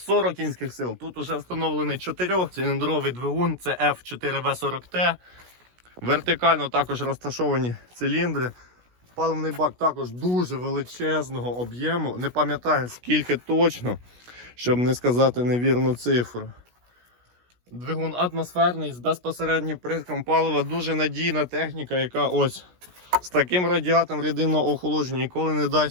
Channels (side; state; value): left; late; 16 ms